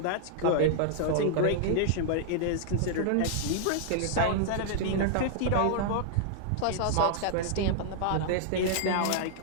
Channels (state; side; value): different; both; correlation -0.01